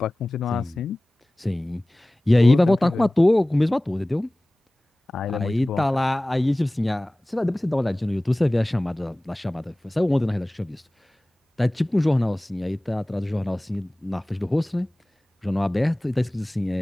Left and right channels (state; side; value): normal; both; correlation 0.98